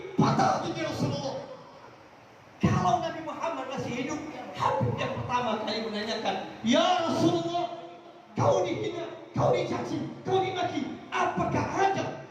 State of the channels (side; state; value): both; identical; correlation 1.00